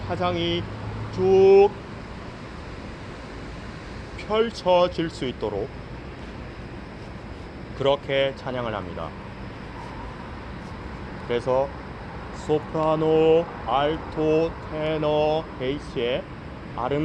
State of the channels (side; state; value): both; identical; correlation 1.00